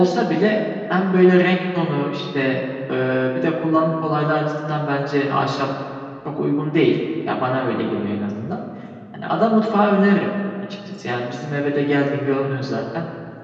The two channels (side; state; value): both; identical; correlation 1.00